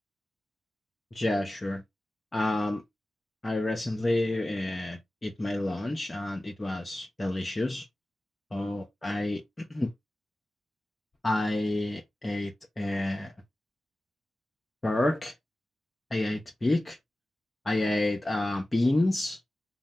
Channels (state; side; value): normal; both; correlation 0.96